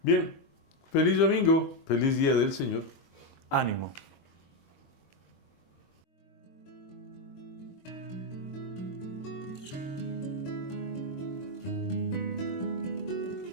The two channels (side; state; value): right; late; 22 ms